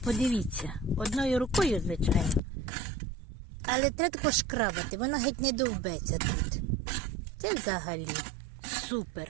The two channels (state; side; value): drops out; left; at 2.4 s